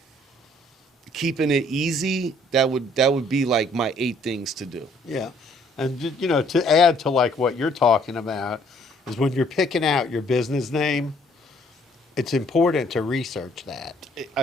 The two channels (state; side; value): normal; both; correlation 0.62